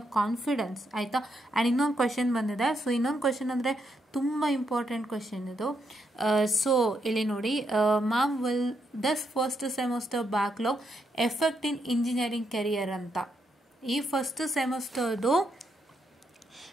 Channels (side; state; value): both; normal; correlation 0.79